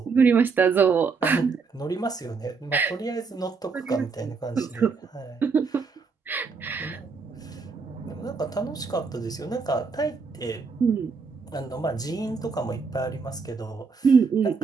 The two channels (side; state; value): left; quieter; 4.9 dB